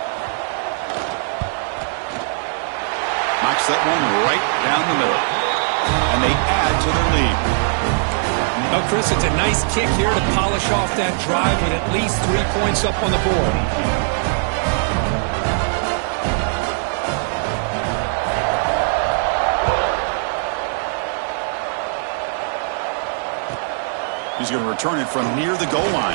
Knocks that one right down the middle. And they add to their lead. Well, Chris, it's a nice kick here to polish off that drive with at least 3 points up on the board. He's going to return it from near the goal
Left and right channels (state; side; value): silent; left; digital silence